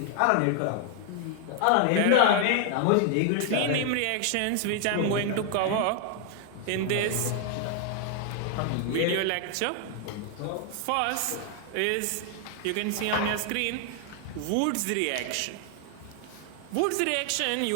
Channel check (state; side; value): different; both; correlation 0.00